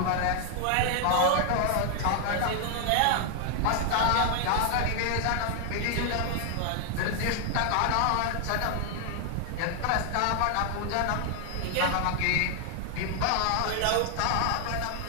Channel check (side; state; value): both; different; correlation 0.00